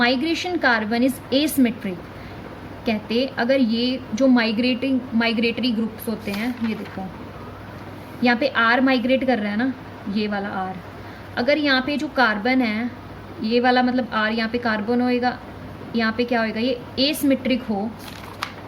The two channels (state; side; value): identical; both; correlation 1.00